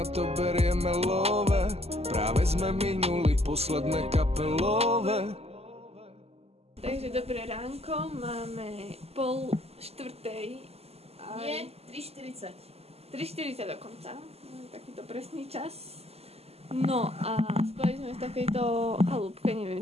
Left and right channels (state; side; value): late; left; 0.29 ms